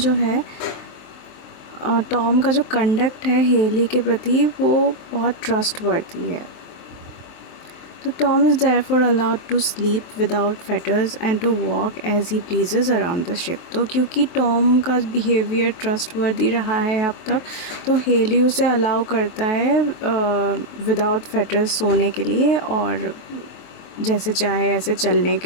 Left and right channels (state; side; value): late; right; 23 ms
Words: है टॉम का जो कंडक्ट है हेली के प्रति वो बहुत ट्रस्टवर्दी है। तो Tom is therefore allowed to sleep without fetters and to walk as he pleases around the ship. तो क्योंकि टॉम का बिहेवियर ट्रस्टवर्दी रहा है अब तक, तो हेली उसे अलाउ करता है विदाउट फेटर्स सोने के लिए और जैसे चाहे ऐसे चलने